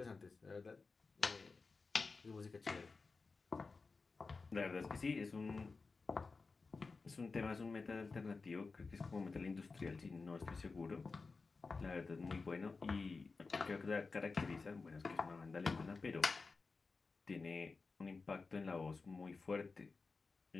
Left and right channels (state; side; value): quieter; right; 4.2 dB